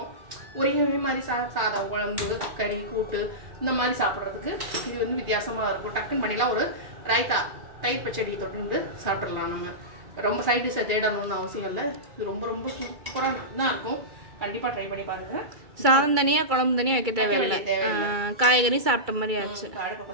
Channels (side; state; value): left; late; 2.3 ms